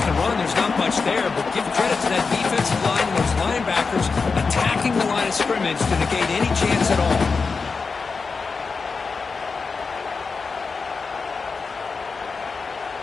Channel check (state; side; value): quieter; right; 4.7 dB